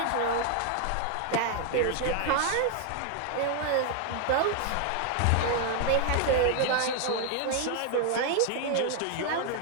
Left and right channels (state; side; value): different; both; correlation 0.00